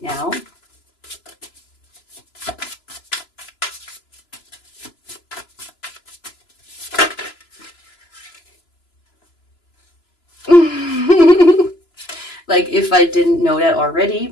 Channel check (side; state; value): right; late; 3.0 ms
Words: now? Like, if I didn't know that already,